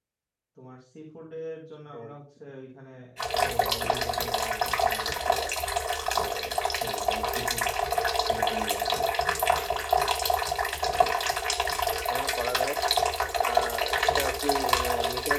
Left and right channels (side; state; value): both; identical; correlation 1.00